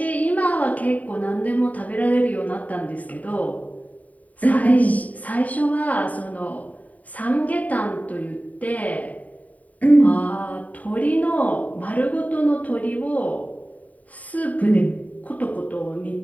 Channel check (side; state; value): right; late; 0.072 ms